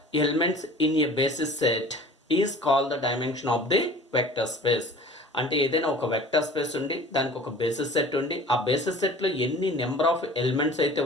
elements in A basis set is called the dimension of the vector space. అంటే ఏదైనా ఒక వెక్టర్ స్పేస్ ఉండి దానికి ఒక బేసిస్ సెట్ ఉండి ఆ బేసిస్ సెట్లో ఎన్ని నెంబర్ ఆఫ్ ఎలిమెంట్స్ అయితే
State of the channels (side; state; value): both; normal; correlation 0.44